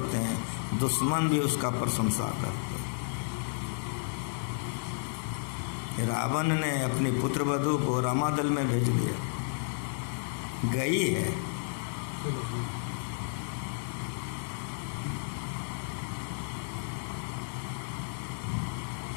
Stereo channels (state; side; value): silent; right; digital silence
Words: हैं, दुश्मन भी उसका प्रशंसा करते हैं। रावण ने अपनी पुत्र वधू को रामादल में भेज दिया, गई है।